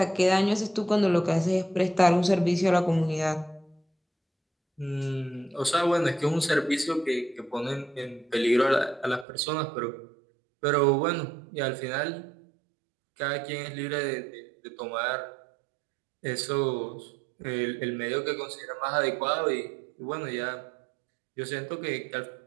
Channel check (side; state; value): left; drops out; at 9.2 s